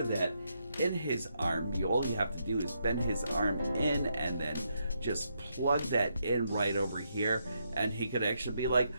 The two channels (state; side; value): inverted; both; correlation -0.79